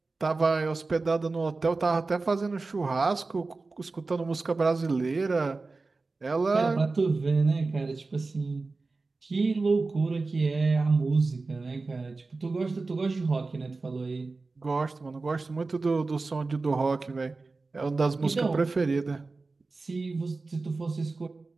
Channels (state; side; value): quieter; left; 3.7 dB